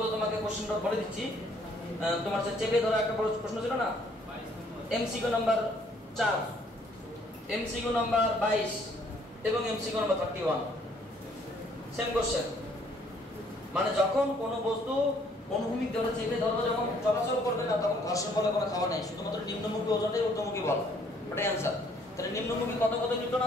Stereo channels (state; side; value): normal; both; correlation 0.63